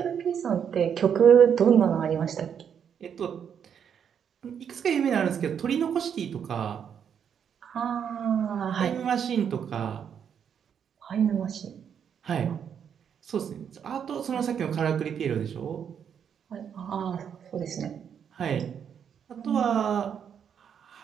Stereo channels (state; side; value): quieter; left; 7.9 dB